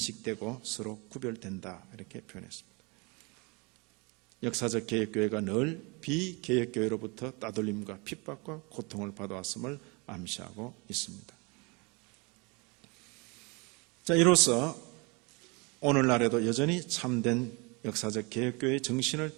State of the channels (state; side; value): quieter; left; 29.2 dB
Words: 서로 구별된다 이렇게 표현했습니다. 역사적 개혁교회가 늘 비개혁교회로부터 따돌림과 핍박과 고통을 받아왔음을 암시하고 있습니다. 자, 이로써 오늘날에도 여전히 참된 역사적 개혁교회의 정신을